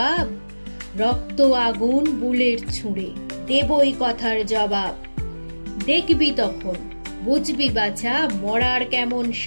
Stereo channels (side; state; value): both; inverted; correlation -1.00